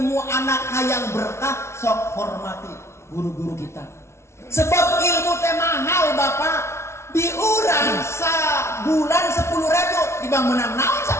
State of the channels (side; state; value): right; late; 0.13 ms